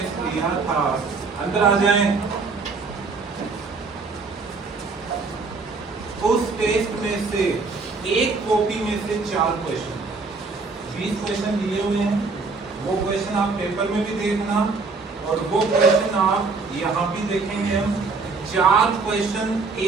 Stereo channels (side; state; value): left; quieter; 4.2 dB